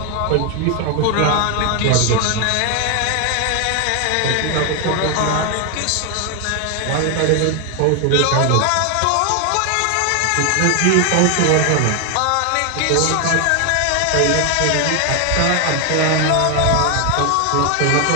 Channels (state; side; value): different; both; correlation 0.01